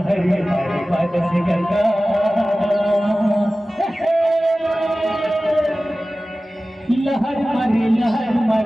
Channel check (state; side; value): normal; both; correlation 0.96